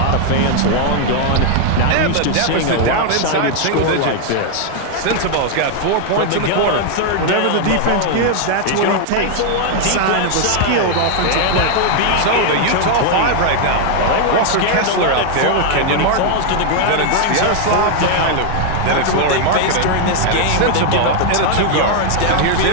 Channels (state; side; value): different; both; correlation 0.00